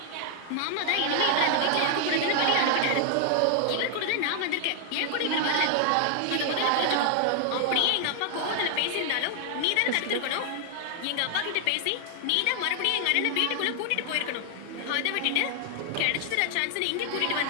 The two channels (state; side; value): different; both; correlation 0.00